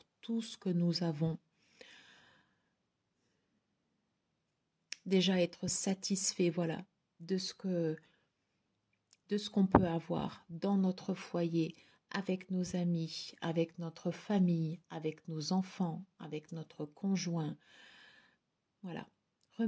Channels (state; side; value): identical; both; correlation 1.00